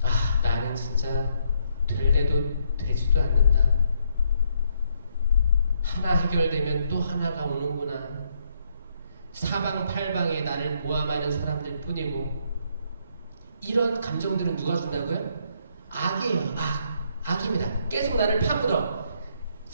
나는 진짜 될래도 되지도 않는다. 하나 해결되면 또 하나가 오는구나. 사방팔방에 나를 모함하는 사람들 뿐이고 이런 감정들은 누가 준다고요? 악이에요. 악입니다. 계속 나를 파묻어.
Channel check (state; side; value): inverted; both; correlation -0.72